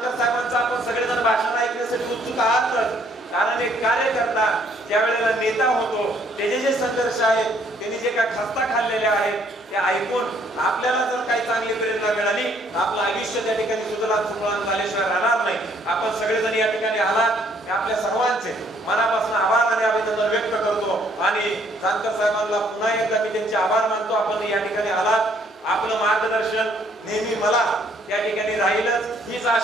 साहेबांचं आपण सगळेजण भाषण ऐकण्यासाठी उत्सुक आहातच. कारण एक कार्यकर्ता ज्या वेळेला नेता होतो त्याचे जे संघर्ष आहेत, त्यांनी जे काही खस्ता खाल्लेले आहेत ते ऐकून आपल्याला जर काही चांगली प्रेरणा मिळाली तर आपलं आयुष्य त्या ठिकाणी सुधारण झाल्याशिवाय राहणार नाही. आपण सगळेजण या ठिकाणी आलात, आपल्या सर्वांचे मनापासून आभार आणि अभिनंदन व्यक्त करतो. आणि जानकर साहेबांना पुन्हा एकदा मी त्यांचे आभार मानतो. आपण या ठिकाणी आलात, आपलं मार्गदर्शन नेहमी मला या ठिकाणी राहीलच हीच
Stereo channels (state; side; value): normal; both; correlation 0.65